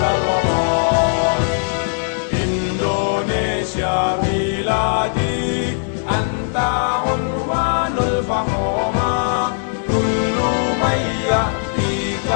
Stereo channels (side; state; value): right; silent; digital silence